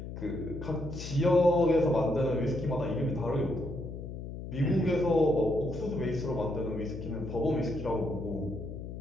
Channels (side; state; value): left; noise; hum, 9 dB below the sound